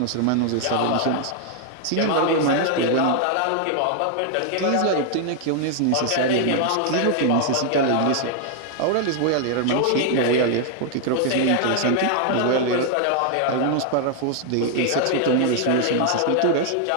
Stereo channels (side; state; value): both; different; correlation 0.00